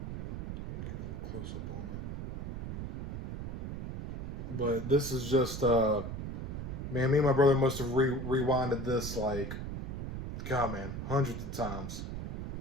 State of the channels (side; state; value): right; noise; rumble, 6 dB below the sound